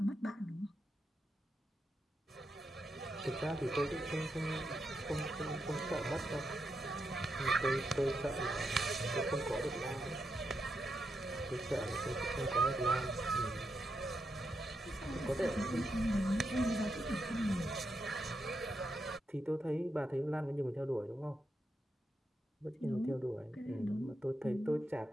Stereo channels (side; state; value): both; normal; correlation 0.84